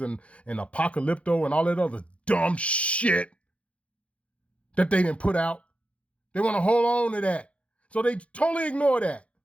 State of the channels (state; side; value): late; right; 0.062 ms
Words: and Apocalypto and all that other dumb shit that they didn't put out. They want to hold on to that. So they totally ignore that.